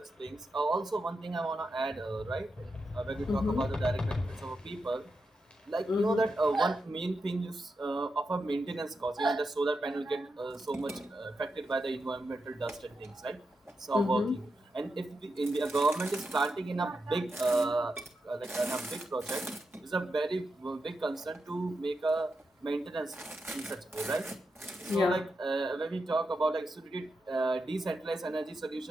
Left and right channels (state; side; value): normal; both; correlation 0.86